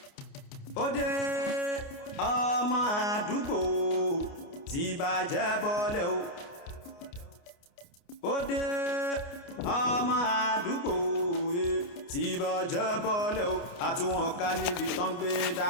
Ode ọmọ àdúgbò tí bàjẹ́ bọ́lẹ̀ o. Ode ọmọ àdúgbò tí bàjẹ́ bọ́lẹ̀ o. Àtúwọ̀n ká níbi tán gbé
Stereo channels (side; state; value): right; late; 29 ms